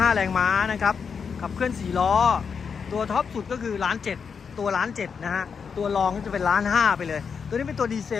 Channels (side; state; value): right; quieter; 6.2 dB